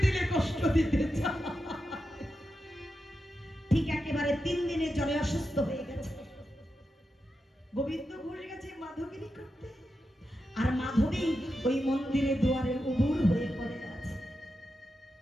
দিলে কষ্ট দিতে চাই। ঠিক একেবারে 3 দিনের জ্বরে অসুস্থ হয়ে গেছে। গোবিন্দ ঘুরে গেছে মাধবগিরি করতে, আর মাধবী ওই মন্দিরে দুয়ারে উবুর হয়ে পড়ে আছে।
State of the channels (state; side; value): normal; both; correlation 0.89